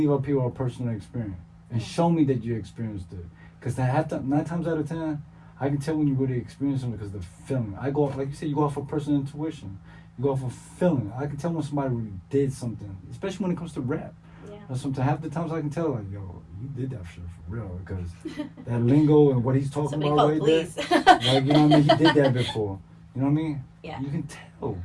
our people are personal experience and show me that you experienced it. Because 9 times out of 10, I can tell when you really experience something because the feeling. I go off, like you said, you go off of personal intuition. You go off of feeling. I can tell when somebody really did something, especially when it comes to rap. Yeah. Or sometimes half the times I can tell, like, yo, you did that shit for real because that lingo and what he's talking Somebody about call right police. there. Like, you know what I mean? He did that before. You know what I mean? Yeah. You can tell.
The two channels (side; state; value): both; identical; correlation 1.00